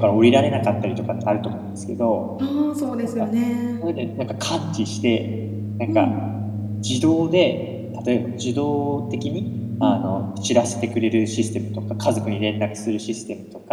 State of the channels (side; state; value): both; identical; correlation 1.00